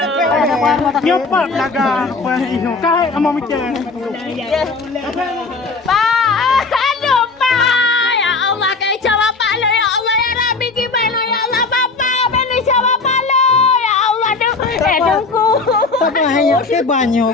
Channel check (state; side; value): quieter; right; 4.0 dB